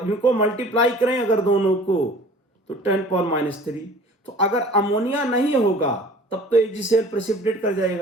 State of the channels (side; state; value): both; normal; correlation 0.46